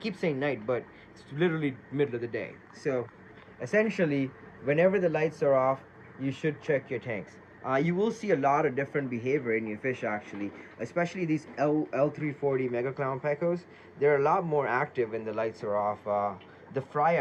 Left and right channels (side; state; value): both; identical; correlation 1.00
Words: saying night, but it's literally middle of the day. So essentially, whenever the lights are off, you should check your tanks. You will see a lot of different behavior in your fish, actually, especially these L340 Mega Clown Pecos. They're a lot more active when the lights are off. The fry